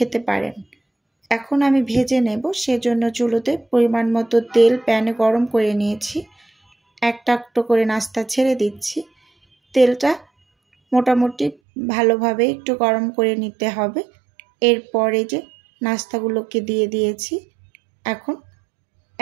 পারেন। এখন আমি ভেজে নেব, সেজন্য চুলোতে পরিমাণ মতো তেল প্যানে গরম করে নিয়েছি। একটা একটা করে নাস্তা ছেড়ে দিচ্ছি। তেলটা মোটামুটি ভালোভাবে একটু গরম করে নিতে হবে। এরপরে যে নাস্তাগুলোকে দিয়ে দিয়েছি। এখন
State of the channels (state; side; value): drops out; left; at 11.6 s